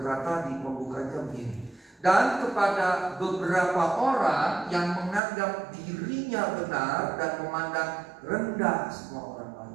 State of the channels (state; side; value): drops out; left; at 5.2 s